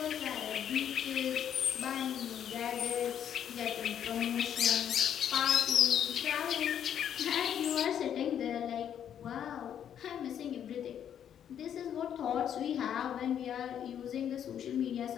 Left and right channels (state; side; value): quieter; right; 9.3 dB